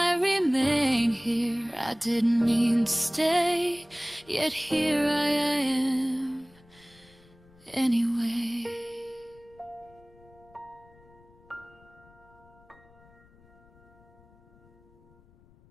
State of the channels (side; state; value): left; noise; rumble, 27 dB below the sound